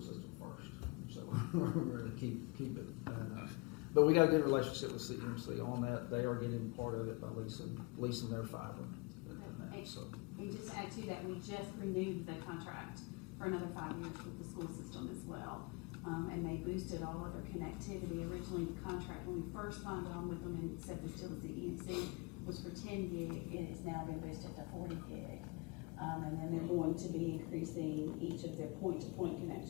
first. So we're going to keep it. But we got a good relationship with CMC on that. They are getting part of it by leasing their fiber. And just to add to that, we just renewed the contract for another 5 years with the school system as well. And they boosted all of their connectivity. Originally, the contract, when we first signed on with them and said this still was the EMC, was for 10 gig. It's now been boosted to 40 gig. And then they're going to be increasing each of their point-to-point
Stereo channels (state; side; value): quieter; right; 28.1 dB